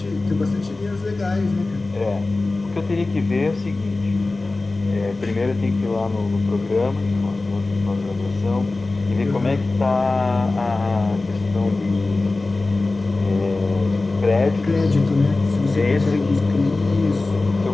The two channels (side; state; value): right; quieter; 3.3 dB